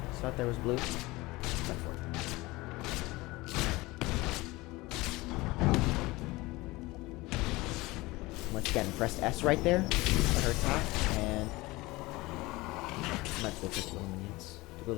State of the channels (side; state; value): right; quieter; 21.2 dB